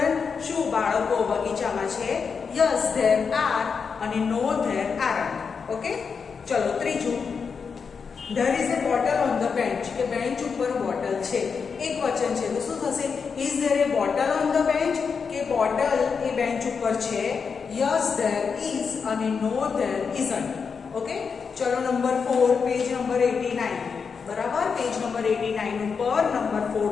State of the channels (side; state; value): right; quieter; 5.7 dB